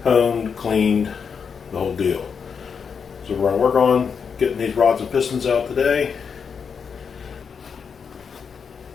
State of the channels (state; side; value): quieter; right; 6.3 dB